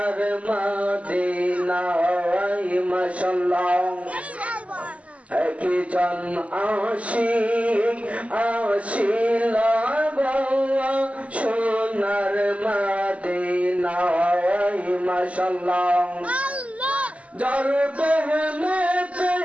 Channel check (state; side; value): late; left; 0.066 ms